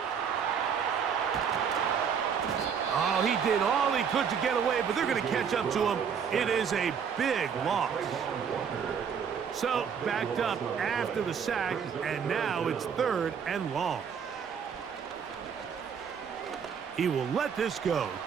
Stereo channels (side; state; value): left; quieter; 7.1 dB